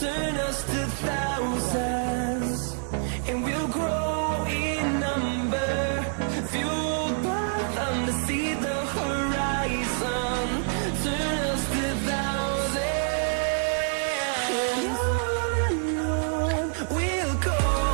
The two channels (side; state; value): left; silent; digital silence